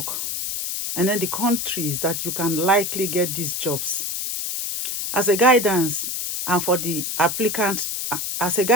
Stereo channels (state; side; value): noise; left; hiss, 3 dB below the sound